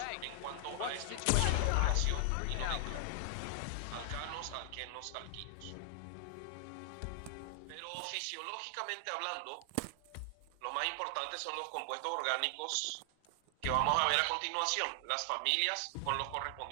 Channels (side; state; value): both; different; correlation 0.00